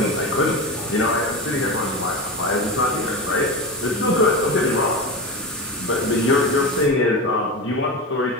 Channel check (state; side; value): normal; both; correlation 0.22